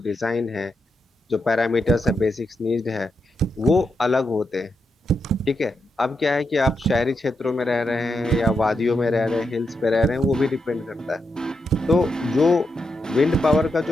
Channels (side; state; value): both; normal; correlation 0.84